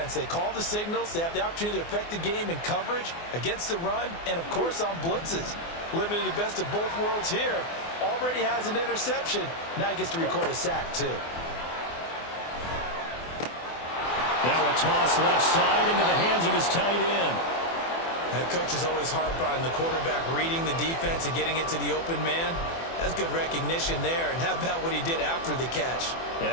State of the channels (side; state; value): right; late; 24 ms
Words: They call the signals. They have the opportunity to affect the game in coverage, against the run, and, of course, on blitzes. Living in the best of both worlds here. Already has an interception. Now he gets to record a sack, too. Now a toss left side into the hands of his tight end. That coach is always harp on the quarterback reading the defense and getting it to the open man. That's good recognition there. And how about what he did after the catch?